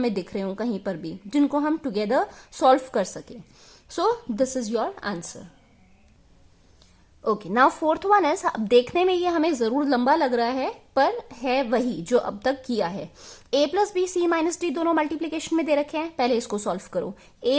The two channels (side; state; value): both; identical; correlation 1.00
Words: दिख रहे हो कहीं पर भी, जिनको हम टुगेदर सॉल्व कर सके. सो this is your answer. Okay, now fourth one is, अब देखने में ये हमें जरूर लंबा लग रहा है पर है वही जो अब तक किया है। a plus b c minus d दोनों मल्टीप्लीकेशन में दे रखे हैं, पहले इसको सॉल्व करो। a